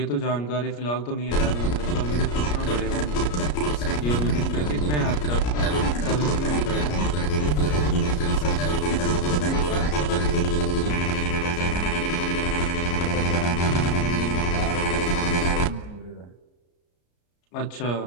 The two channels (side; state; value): right; late; 34 ms